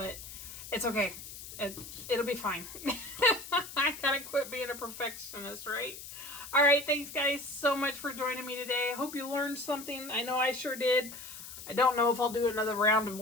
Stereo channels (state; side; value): noise; left; hiss, 12 dB below the sound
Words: it's okay. It'll be fine. I gotta quit being a perfectionist, right? All right, thanks guys so much for joining me today. I hope you learned something. I know I sure did. I don't know if I'll do another round of